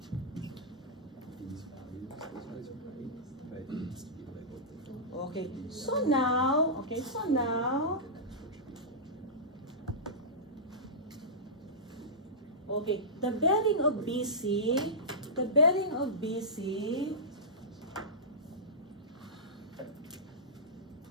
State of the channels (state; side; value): normal; both; correlation -0.16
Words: Okay, so now, okay, the bearing of BC, the bearing